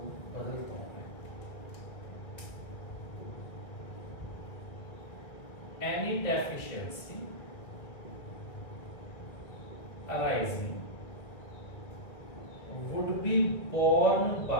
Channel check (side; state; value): right; late; 1.6 ms